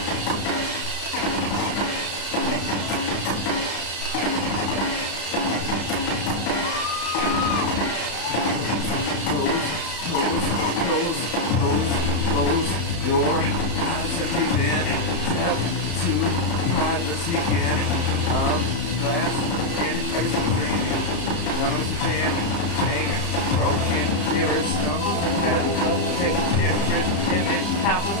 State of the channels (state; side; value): late; right; 35 ms